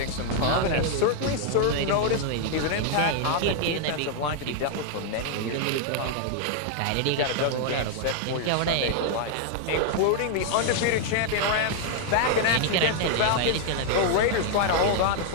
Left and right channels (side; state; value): both; different; correlation 0.00